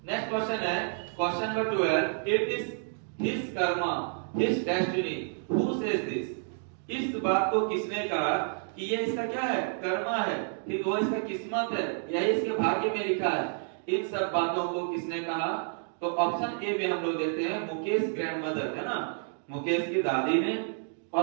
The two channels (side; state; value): left; silent; 58 dB below the other